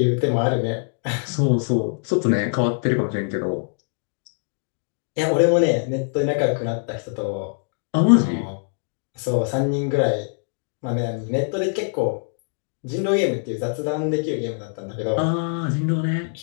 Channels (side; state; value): right; silent; digital silence